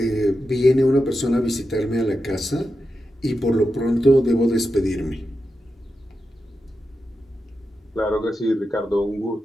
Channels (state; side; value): normal; both; correlation 0.89